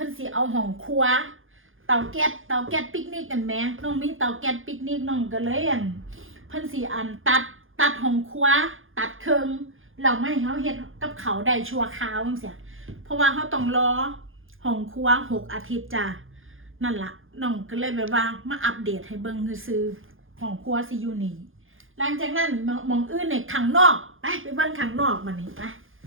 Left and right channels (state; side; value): late; left; 0.59 ms